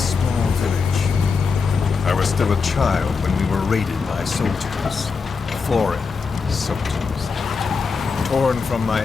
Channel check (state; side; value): quieter; right; 5.1 dB